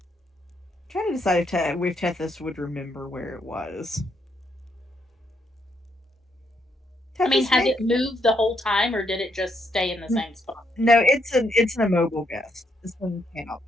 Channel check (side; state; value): both; normal; correlation 0.76